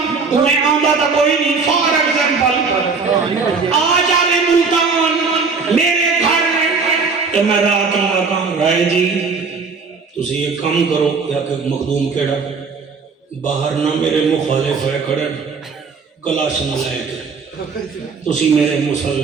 انہیں آمدہ تھا کوئی نہیں فار ایگزامپل آ جاوے ملتان میرے گھر میں تو میں رات آگا رائے جی تسی یہ کام کرو یا کہ مخدوم کیڑا باہر نہ میرے مخالف ہے کھڑے کلاش نہ لائے کے تسی میرے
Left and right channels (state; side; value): quieter; left; 4.9 dB